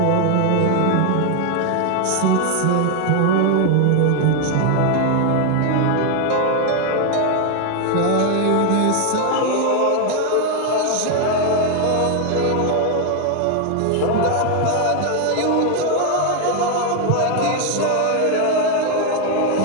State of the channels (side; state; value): both; different; correlation 0.01